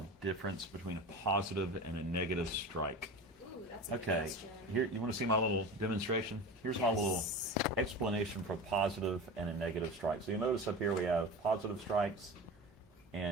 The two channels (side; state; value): both; normal; correlation 0.30